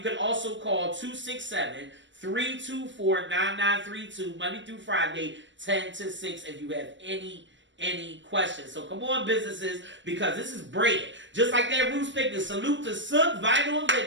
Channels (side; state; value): left; late; 0.54 ms